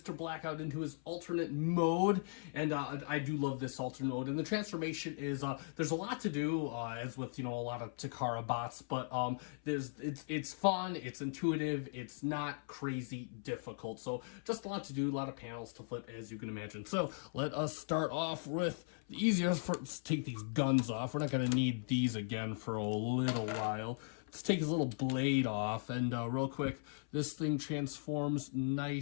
Blackout into his alternate mode, and I do love this alternate mode. And the transformation is there's a lot to do, as with a lot of Takara bots, but it's fun, it's intuitive, it's not crazy difficult. So just a lot to do, a lot of panels to flip, as you can imagine. So let us start off with the easiest. Let's take these guns off. We're not gonna need these again for a little while. Let's take his little blade off, and real quick, this thing transforms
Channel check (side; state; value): right; silent; 52 dB below the other